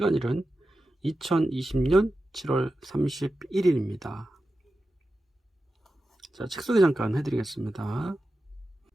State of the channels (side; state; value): both; normal; correlation 0.92